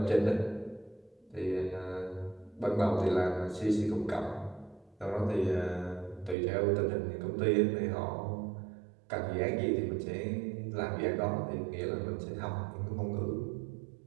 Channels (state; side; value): drops out; left; at 6.4 s